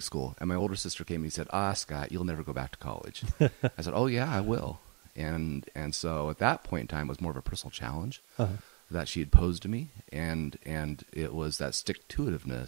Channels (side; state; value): left; quieter; 34.6 dB